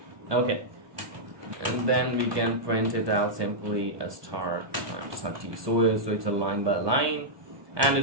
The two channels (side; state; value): left; late; 1.1 ms